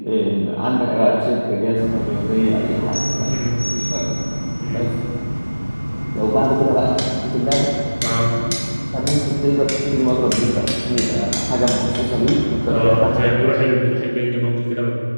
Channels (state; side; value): inverted; both; correlation -1.00